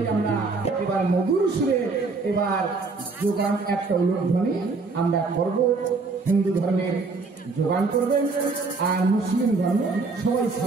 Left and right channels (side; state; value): left; quieter; 4.0 dB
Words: আমরা এবার মধুর সুরে এবার যোগান একটা উলুধ্বনি আমরা করব। হিন্দু ধর্মের যোগান করবেন আর মুসলিম ধর্মে সবাই